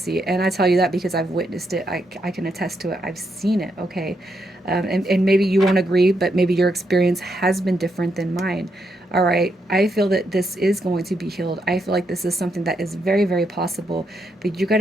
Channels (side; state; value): both; normal; correlation 0.80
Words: And I tell you that because I've witnessed it. I can attest to it. I've seen it. Okay. And maybe you won't agree, but maybe your experience has been different than mine. All right. I feel that this is going to be healed. I feel like this is something that is very, very possible, but you got